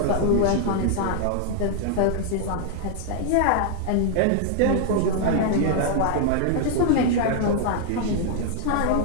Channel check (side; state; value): both; different; correlation 0.00